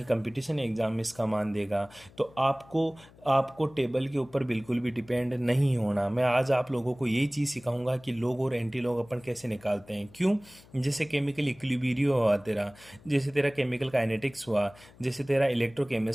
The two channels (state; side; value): noise; left; hum, 24 dB below the sound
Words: कंपटीशन एग्जाम में इसका मान देगा। तो आपको आपको टेबल के ऊपर बिल्कुल भी डिपेंड नहीं होना। मैं आज आप लोगों को यही चीज़ सिखाऊंगा कि लॉग और एंटी लॉग अपन कैसे निकालते हैं। क्यों? जैसे केमिकल इक्विलिब्रियम हुआ तेरा, जैसे तेरा केमिकल काइनेटिक्स हुआ, जैसे तेरा